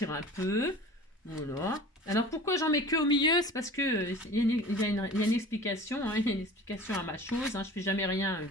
un peu. Voilà. Alors pourquoi j'en mets que au milieu? C'est parce que il y a une explication, hein, il y a une explication à ma chose. Hein, je fais jamais rien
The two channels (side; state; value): both; normal; correlation 0.41